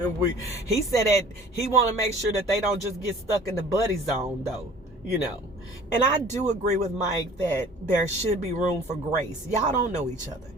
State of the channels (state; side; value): normal; both; correlation 0.48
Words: He said that he want to make sure that they don't just get stuck in the buddy zone, though, you know. And I do agree with Mike that there should be room for grace. Y'all don't know each other.